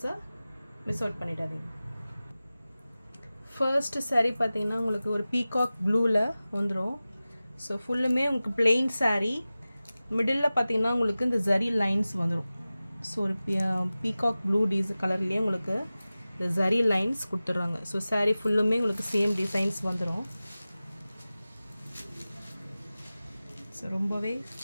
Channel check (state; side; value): inverted; both; correlation -0.97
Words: மிஸ் அவுட் பண்ணிடாதீங்க. ஃபர்ஸ்ட் சாரீ பார்த்தீங்கன்னா உங்களுக்கு ஒரு பீகாக் ப்ளூவில் வந்துடும். ஸோ ஃபுல்லுமே உங்களுக்கு பிளெயின் சாரீ, மிடில் பார்த்தீங்கன்னா உங்களுக்கு இந்த ஜரி லைன்ஸ் வந்துடும். ஸோ ஒரு பீகாக் ப்ளூ கலர்லேயே உங்களுக்கு இந்த ஜரி லைன்ஸ் கொடுத்துட்றாங்க. ஸோ சாரீ ஃபுல்லுமே உங்களுக்கு சேம் டிசைன்ஸ் வந்துடும். ஸோ ரொம்பவே